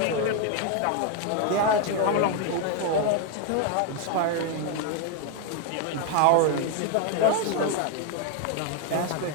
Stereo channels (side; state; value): both; different; correlation 0.01